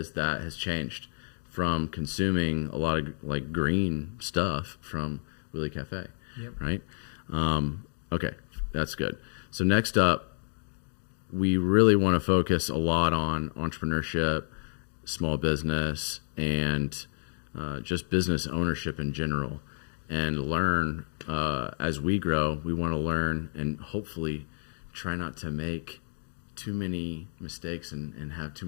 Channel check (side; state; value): right; silent; digital silence